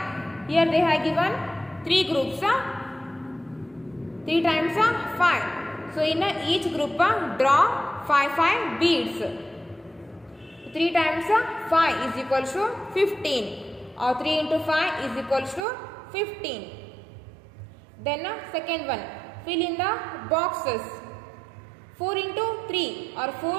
Here they have given 3 groups. 3 times 5. So in each group draw 5 beads. 3 times 5 is equals to 15, or 3 into 5 is equals to 15. Then second one, fill in the boxes. 4 into 3, or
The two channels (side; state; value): left; drops out; at 15.7 s